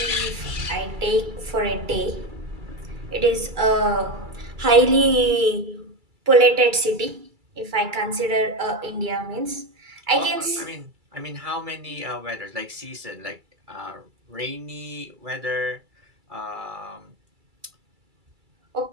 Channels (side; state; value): left; late; 2.3 ms